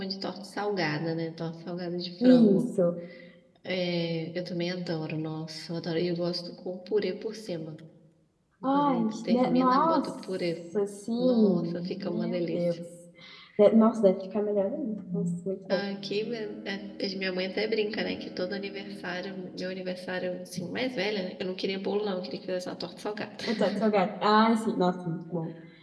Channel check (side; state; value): both; identical; correlation 1.00